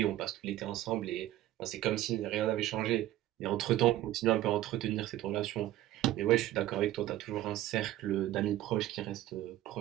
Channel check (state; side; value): quieter; left; 14.4 dB